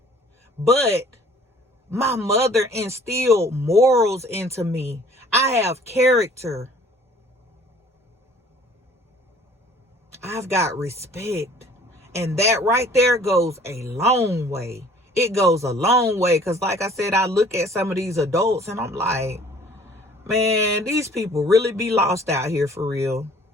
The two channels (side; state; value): both; normal; correlation 0.53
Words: but my mother instilled morals into me. I have character. I've got respect. And that right there goes a long way. It goes a long way. Because like I said, I look at some of these adults and I'm like, man, these people really be lost out here for real.